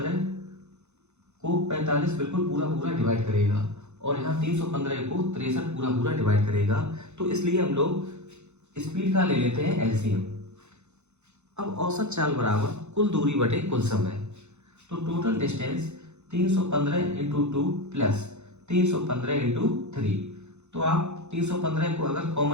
को 45 बिल्कुल पूरा पूरा डिवाइड करेगा और यहाँ 315 को 63 पूरा पूरा डिवाइड करेगा, तो इसलिए हम लोग स्पीड का ले लेते हैं एलसीएम। अब औसत चाल बराबर कुल दूरी बटे कुल समय, तो total distance 315 into 2 plus 315 into 3। तो आप 315 को अगर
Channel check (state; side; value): late; left; 0.82 ms